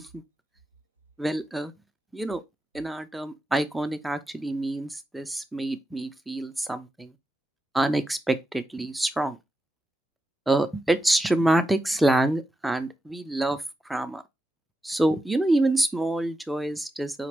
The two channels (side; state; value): both; normal; correlation 0.89